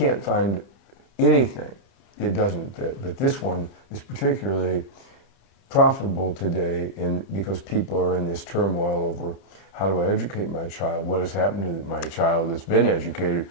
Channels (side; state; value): right; late; 30 ms